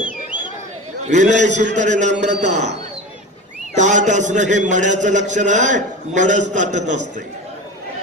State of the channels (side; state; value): both; normal; correlation 0.30